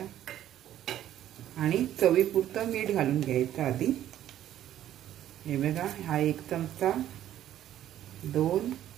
आणि चवीपुरतं मीठ घालून घ्यायचं आधी. हे बघा, हा 1 चमचा, 2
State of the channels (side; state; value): left; quieter; 11.9 dB